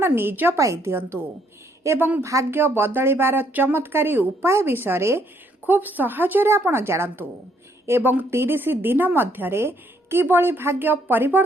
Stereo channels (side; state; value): both; normal; correlation 0.70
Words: निज पाई दियंतु एवं भाग्य बदलिबार चमत्कारी उपाय विषय खूब सहजरे आपण जानतु एवं 30 दिन मध्यरे किबळी भाग्य